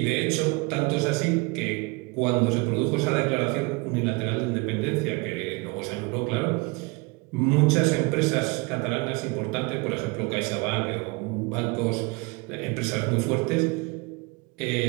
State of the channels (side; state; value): left; quieter; 27.3 dB